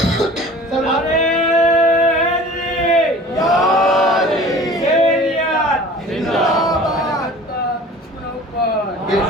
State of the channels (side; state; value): both; normal; correlation 0.44